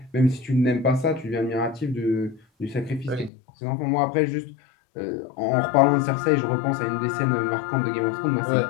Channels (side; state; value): right; drops out; at 3.3 s